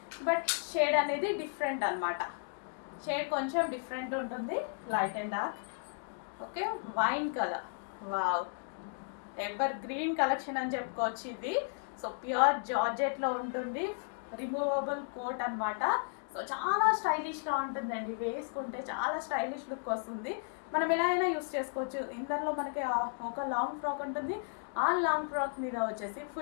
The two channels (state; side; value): silent; right; digital silence